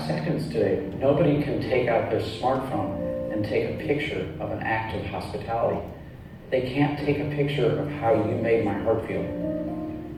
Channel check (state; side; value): identical; both; correlation 1.00